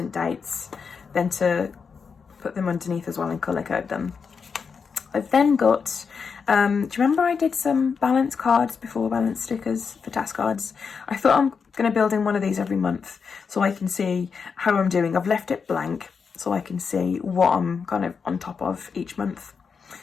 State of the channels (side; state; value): right; quieter; 5.7 dB